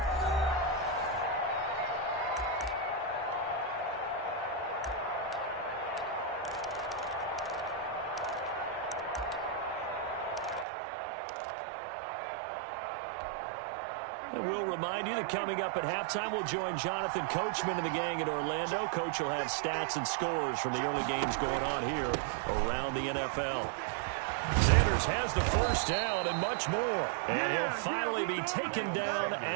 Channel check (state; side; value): drops out; left; at 10.7 s